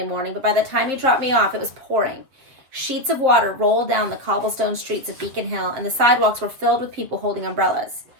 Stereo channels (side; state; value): left; late; 7.5 ms